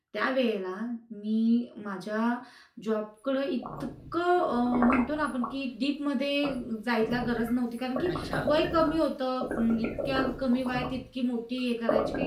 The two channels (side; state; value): both; identical; correlation 1.00